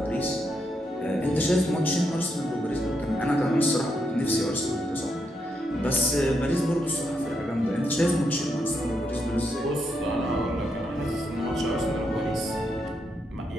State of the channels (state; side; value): normal; both; correlation 0.80